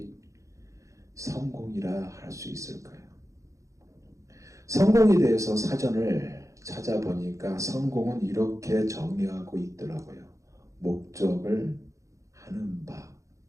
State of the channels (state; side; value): late; left; 0.15 ms